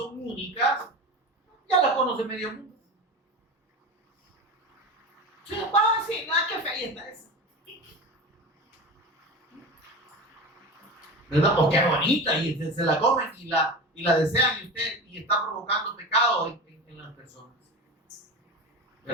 únicas, ya las conoce medio mundo. Sí, nada, qué fea está esa. ¿Verdad? O qué bonita, y se la comen y la desean, y está provocando pecado en las personas.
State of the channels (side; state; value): both; normal; correlation 0.29